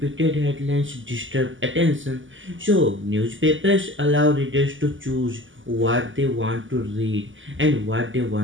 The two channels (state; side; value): late; left; 0.56 ms